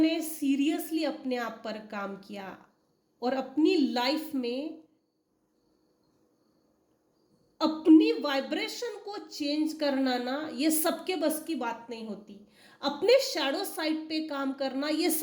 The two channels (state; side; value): identical; both; correlation 1.00